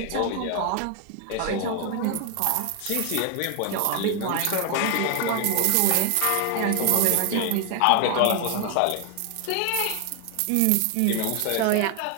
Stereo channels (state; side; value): different; both; correlation 0.01